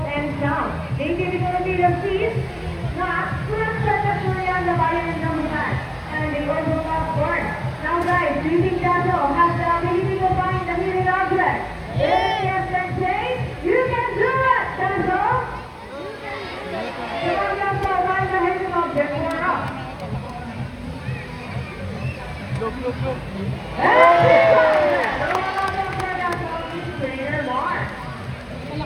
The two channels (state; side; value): identical; both; correlation 1.00